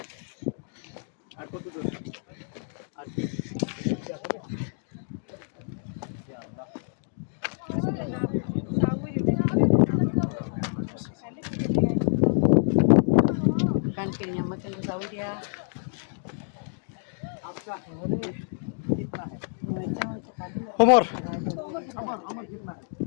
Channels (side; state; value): right; silent; digital silence